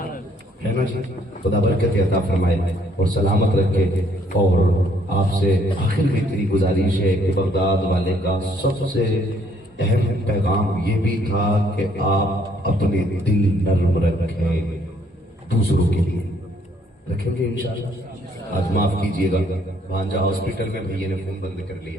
है ना जी। खुदा बरकत अता फरमाए और सलामत रखे। और आपसे आखिर में इतनी गुजारिश है कि बगदाद वाले का सबसे अहम पैगाम ये भी था कि आप अपने दिल नर्म रखें, दूसरों के लिए रखेंगे इंशाअल्लाह। आज माफ कीजिएगा भांजा हॉस्पिटल में भैया ने फोन बंद कर लिए,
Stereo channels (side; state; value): both; normal; correlation 0.66